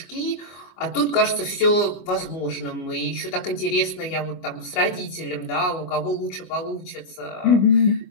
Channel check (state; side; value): late; right; 25 ms